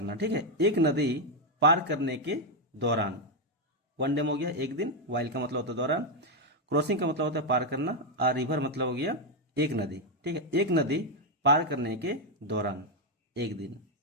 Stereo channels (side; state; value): both; normal; correlation 0.03